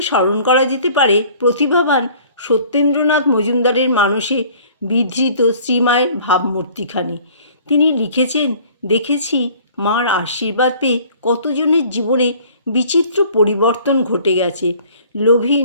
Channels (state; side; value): inverted; both; correlation -0.52